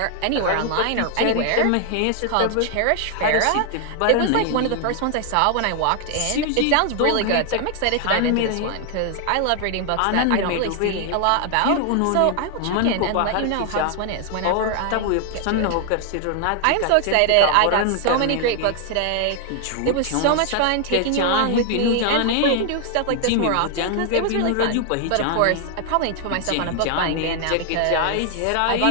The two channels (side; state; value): both; different; correlation 0.00